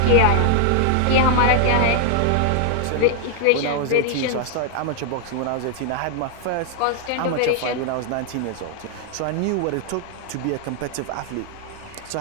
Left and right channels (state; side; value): different; both; correlation 0.00